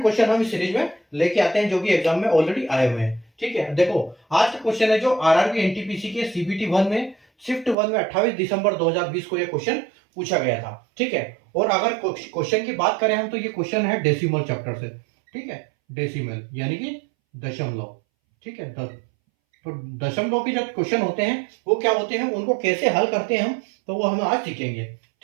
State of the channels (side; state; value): left; drops out; at 7.8 s